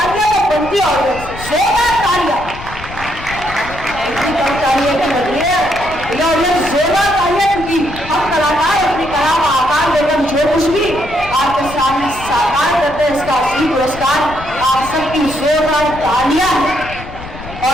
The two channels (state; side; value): noise; left; rumble, 13 dB below the sound